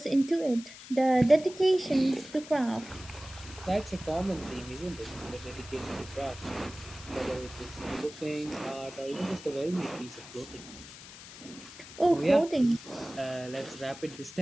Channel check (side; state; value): left; noise; hiss, 16 dB below the sound